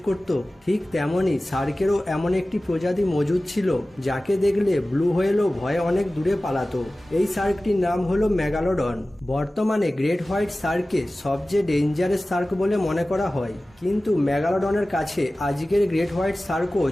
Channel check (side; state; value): both; normal; correlation 0.97